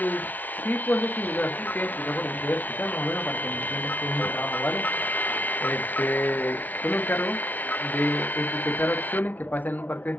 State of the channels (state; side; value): late; right; 0.082 ms